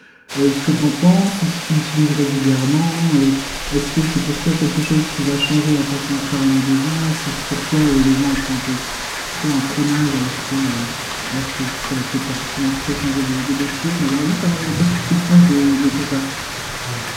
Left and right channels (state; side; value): identical; both; correlation 1.00